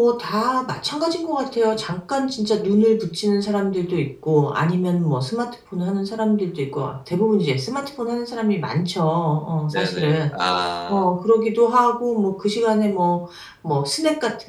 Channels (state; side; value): identical; both; correlation 1.00